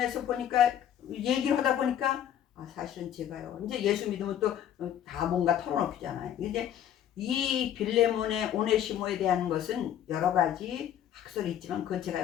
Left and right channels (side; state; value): right; quieter; 10.3 dB